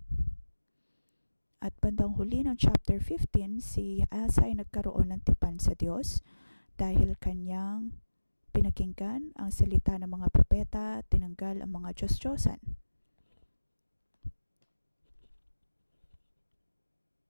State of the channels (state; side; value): inverted; both; correlation -1.00